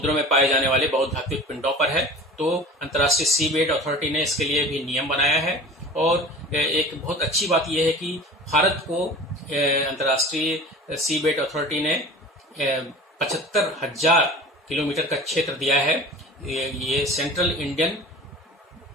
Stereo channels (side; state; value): both; normal; correlation 0.39